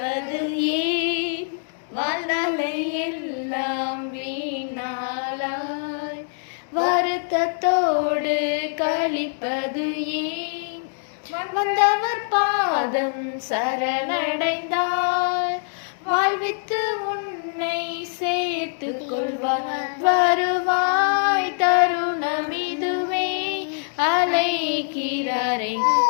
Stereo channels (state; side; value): silent; right; digital silence